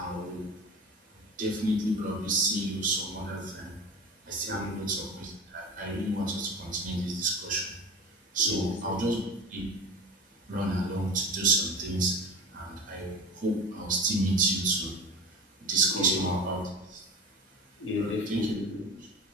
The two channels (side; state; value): both; normal; correlation 0.33